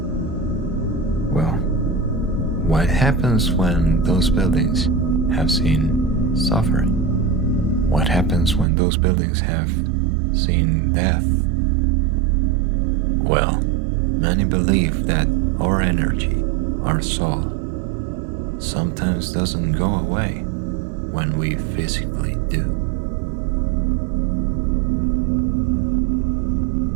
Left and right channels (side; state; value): left; drops out; at 8.7 s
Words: Well, what happens when those buildings have seen suffering? What happens when those buildings have seen death? Well, many believe that our energy, our soul, sometimes doesn't go away when we physically do.